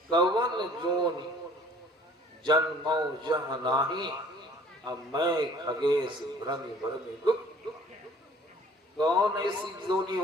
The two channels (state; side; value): normal; both; correlation 0.53